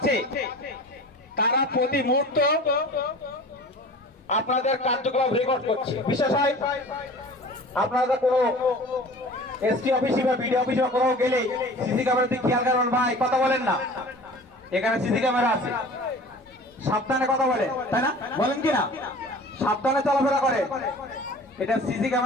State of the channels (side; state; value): both; normal; correlation 0.41